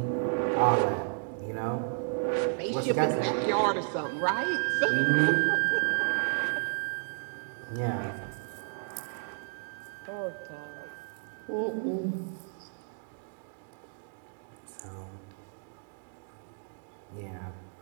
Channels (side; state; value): left; silent; digital silence